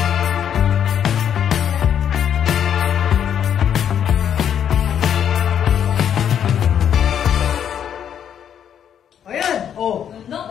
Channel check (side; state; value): right; quieter; 9.0 dB